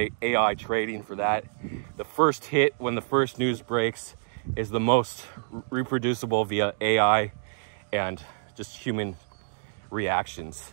AI trading for that. The first hit when the first news breaks is the most reproducible via AI and just human reactions,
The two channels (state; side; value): silent; left; digital silence